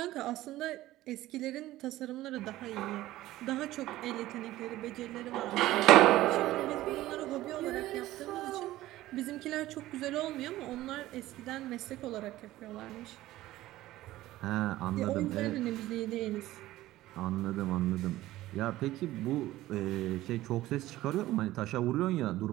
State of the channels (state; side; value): quieter; left; 15.9 dB